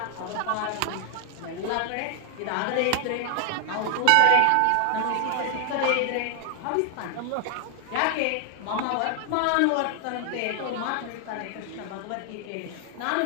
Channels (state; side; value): different; both; correlation 0.00